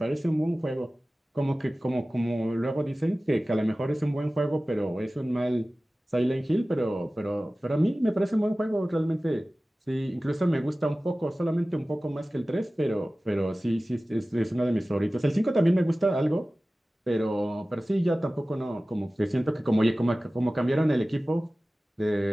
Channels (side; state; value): both; normal; correlation 0.97